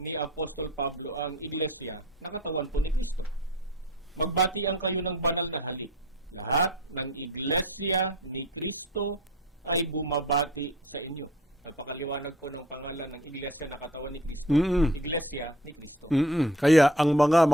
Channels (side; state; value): both; normal; correlation 0.45